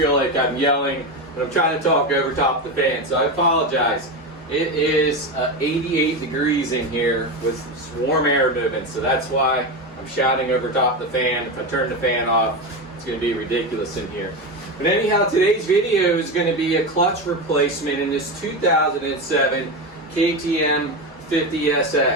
like I'm yelling, but I'm trying to talk over top the fan, so I apologize. It is 88 degrees in here with warm air moving, so that's why I'm shouting over top the fan. If I turn the fan off, it's going to be ridiculous in here. But anyhow, today's video is going to be a clutch replacement in this 2007 KTM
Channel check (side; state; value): both; normal; correlation 0.18